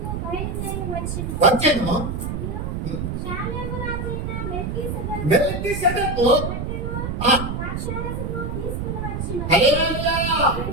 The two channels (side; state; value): right; noise; rumble, 3 dB below the sound